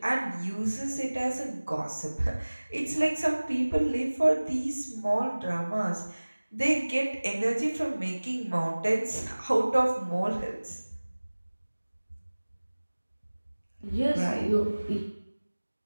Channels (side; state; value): both; inverted; correlation -1.00